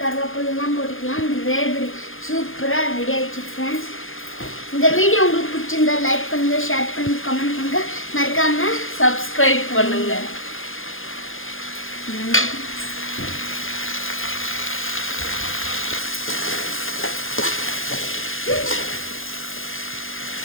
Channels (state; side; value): late; right; 0.59 ms